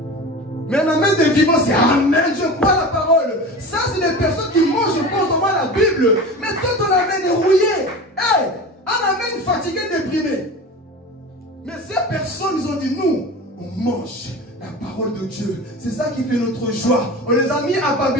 Mais un amène de vivant, c'est amen. Je crois la parole. Ça, c'est les personnes qui mangent constamment la Bible. Mais toi, ton amène est rouillé. Hey, un amène fatigué, déprimé. Mais ces personnes, ils ont dit, nous, on mange la parole de Dieu. C'est ça qui fait notre joie. On les a mis à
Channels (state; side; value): normal; both; correlation 0.33